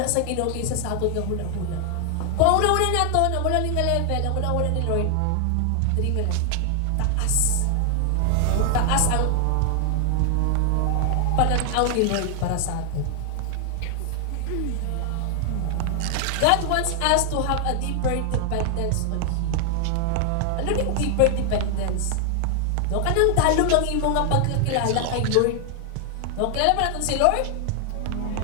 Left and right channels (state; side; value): different; both; correlation 0.00